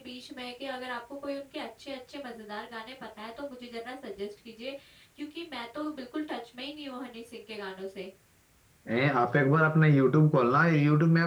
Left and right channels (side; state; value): both; identical; correlation 1.00